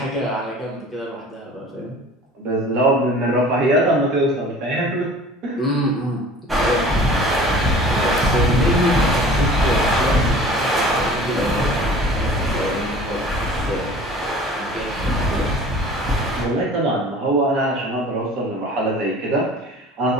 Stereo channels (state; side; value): normal; both; correlation 0.44